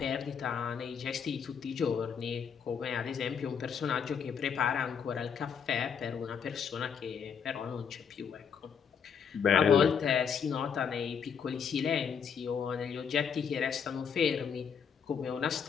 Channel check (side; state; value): right; quieter; 7.0 dB